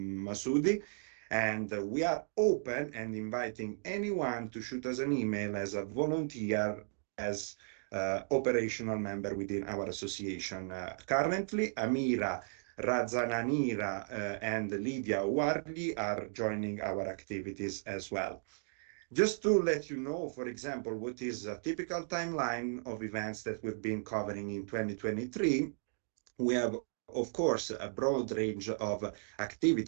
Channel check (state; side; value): silent; left; digital silence